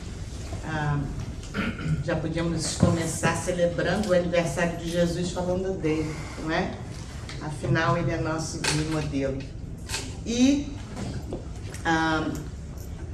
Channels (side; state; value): both; identical; correlation 1.00